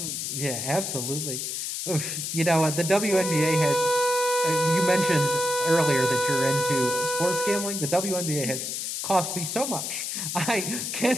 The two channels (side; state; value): left; noise; hiss, 3 dB below the sound